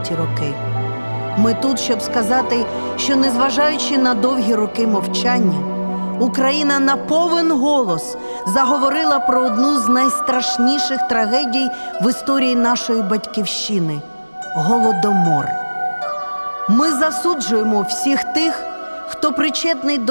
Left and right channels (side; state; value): both; inverted; correlation -1.00